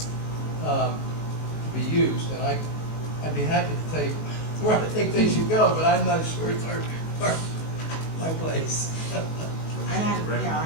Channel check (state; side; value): late; right; 19 ms